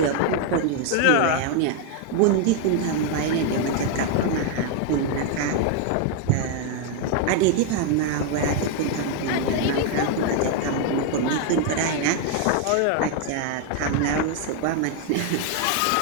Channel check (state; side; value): different; both; correlation 0.01